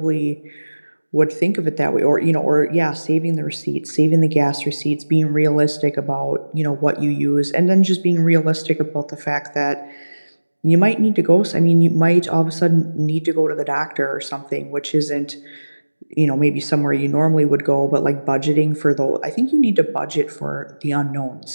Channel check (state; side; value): inverted; both; correlation -1.00